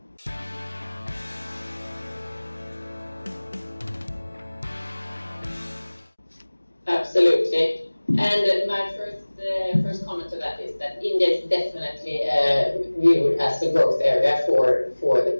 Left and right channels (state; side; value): inverted; both; correlation -1.00